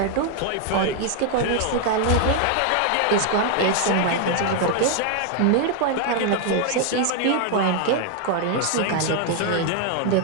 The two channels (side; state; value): both; different; correlation 0.00